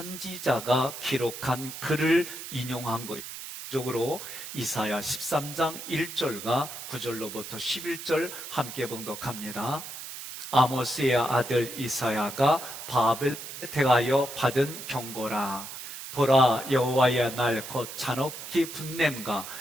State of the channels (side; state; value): right; noise; hiss, 10 dB below the sound